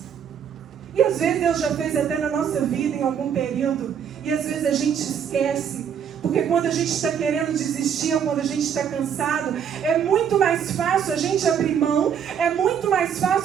E às vezes Deus já fez até na nossa vida em algum período. E às vezes a gente esquece. Porque quando a gente está querendo desistir, ou quando a gente está cansado, é muito mais fácil a gente abrir mão, é muito mais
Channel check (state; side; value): quieter; left; 8.1 dB